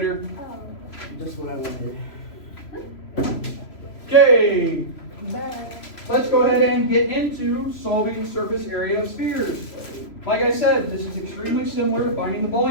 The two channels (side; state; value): right; late; 3.0 ms